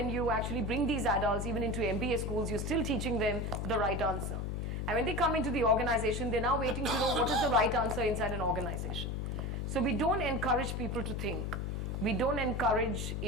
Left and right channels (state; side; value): noise; left; hum, 2 dB below the sound